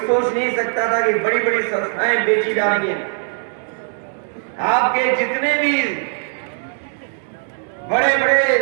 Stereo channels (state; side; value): silent; left; digital silence